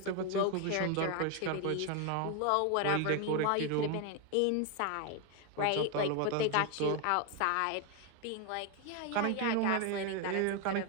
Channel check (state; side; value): different; both; correlation 0.01